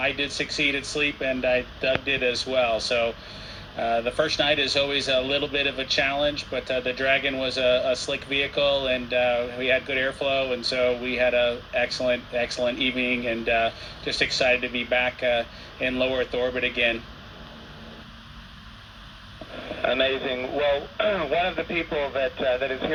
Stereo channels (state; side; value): identical; both; correlation 1.00